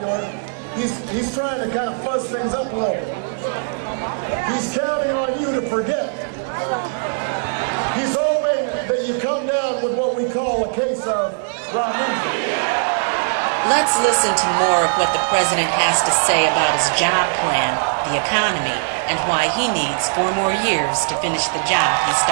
he's trying to kind of fuzz things up a little bit. He's counting on you to forget. He's hoping that you come down with what we call a case of amnesia. Let's listen to more of what the president has to say about his job plan, the economy, and why he needs 4 more years to finish the job he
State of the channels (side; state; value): left; silent; 66 dB below the other